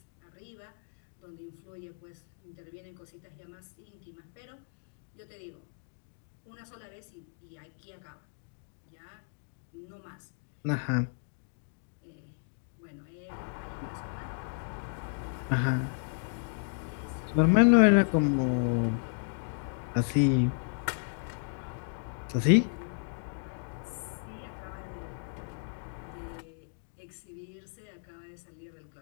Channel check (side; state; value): right; silent; digital silence